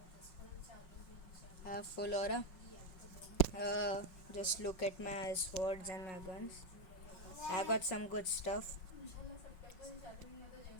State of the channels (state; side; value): late; right; 5.4 ms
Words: I have full aura. Just look at my swords and my guns. I got some good stuff.